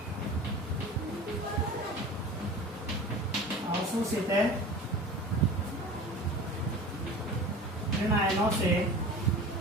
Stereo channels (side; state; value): both; normal; correlation 0.37